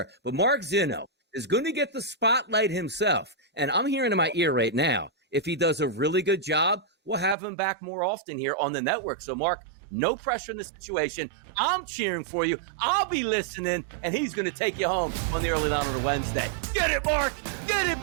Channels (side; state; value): left; drops out; at 7.4 s